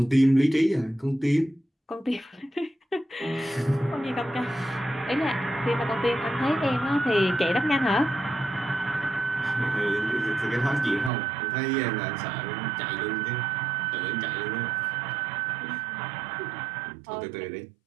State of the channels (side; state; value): left; drops out; at 11.1 s